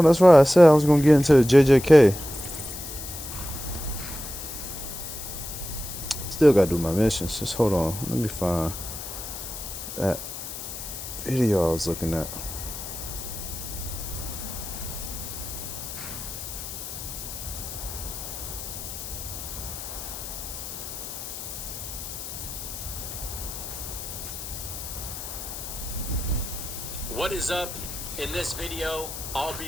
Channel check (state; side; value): noise; left; hiss, 9 dB below the sound